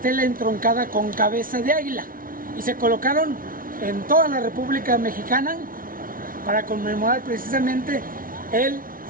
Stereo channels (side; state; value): left; late; 0.41 ms